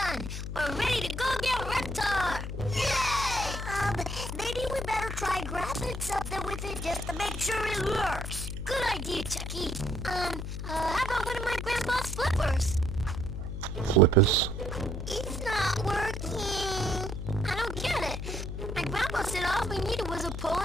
We're ready to go get Reptar. Yay! Maybe we better try grabbing something with it just to make sure it works. Good idea, Chucky. How about one of my grandpa's flippers? Flippers. It's not working. I don't get it. My grandpa said all we needed was a pole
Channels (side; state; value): left; noise; hum, 5 dB below the sound